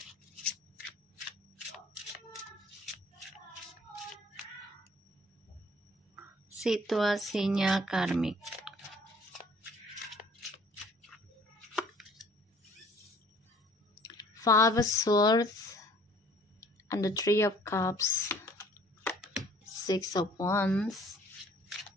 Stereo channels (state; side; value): normal; both; correlation 0.55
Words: Situasinya karmik. Five of Swords and the Three of Cups, Six of Wands,